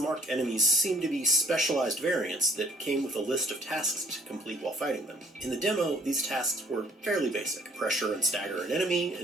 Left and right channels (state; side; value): normal; both; correlation 0.57